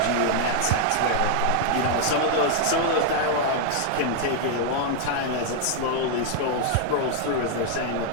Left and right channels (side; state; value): both; different; correlation 0.00